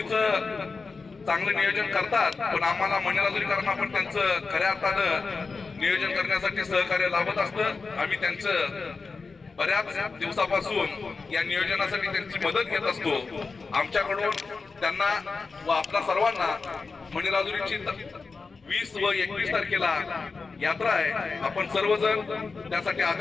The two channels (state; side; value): quieter; right; 4.4 dB